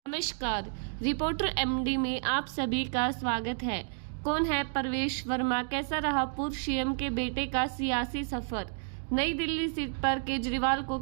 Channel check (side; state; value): left; silent; digital silence